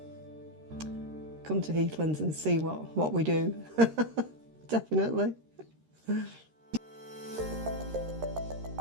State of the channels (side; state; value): left; late; 13 ms